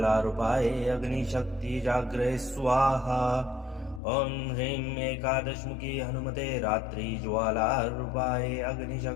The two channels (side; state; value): right; drops out; at 4.0 s